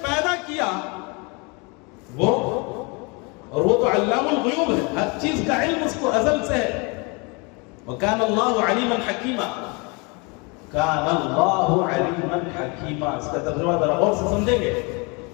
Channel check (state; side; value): quieter; right; 30.1 dB